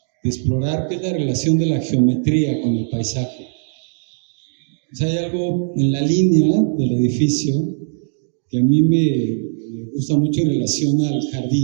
explorar, que es la relación de la geometría con el paisaje. O sea, hay algo en la línea del edificio que a mí me gusta mucho en relación al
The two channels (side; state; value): left; silent; digital silence